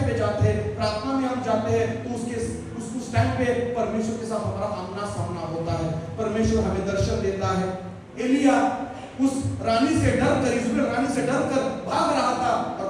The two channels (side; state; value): both; identical; correlation 1.00